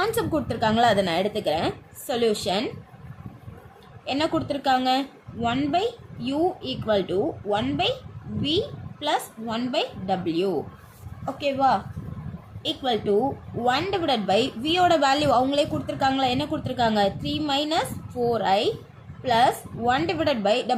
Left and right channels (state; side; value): identical; both; correlation 1.00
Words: கொடுத்துருக்காங்களா, அதை நான் எடுத்துக்கிறேன். சொல்யூஷன் என்ன கொடுத்துருக்காங்க? 1/u equal to 1/v plus 1/w. ஓகேவா? ஈக்குவல் டு 1 டிவைடட் பை வியோட வேல்யூ அவங்களே கொடுத்துருக்காங்களா? என்ன கொடுத்துருக்காங்க? 3 minus 4i plus 1 divided by